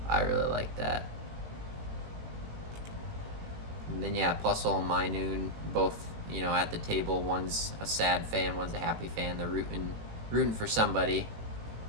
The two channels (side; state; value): left; late; 18 ms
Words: I really like that. And then yeah, Plusle and Minoon, both, you know, at the table. One's a sad fan, one's a happy fan. They're rooting for somebody.